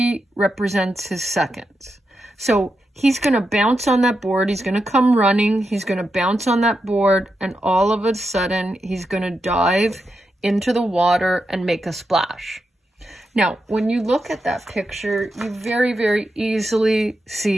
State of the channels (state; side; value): normal; both; correlation 0.86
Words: represents his seconds. So he's going to bounce on that board, he's going to come running, he's going to bounce on that board, and all of a sudden he's going to dive into the water and make a splash. Now, when you look at that picture, you very, very easily